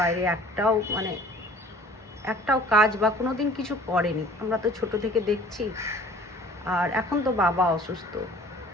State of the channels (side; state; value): both; normal; correlation 0.50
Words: একটাও কাজ বা কোনো দিন কিছু করেনি। আমরা তো ছোট থেকে দেখছি। আর এখন তো বাবা অসুস্থ।